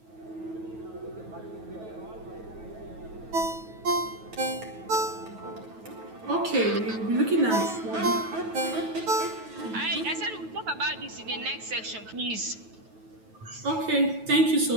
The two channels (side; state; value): left; late; 9.2 ms